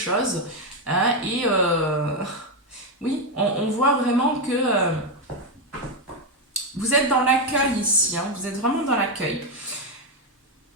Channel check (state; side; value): normal; both; correlation 0.06